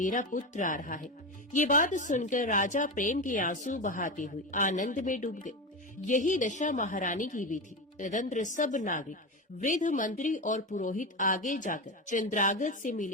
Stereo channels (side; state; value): both; normal; correlation 0.19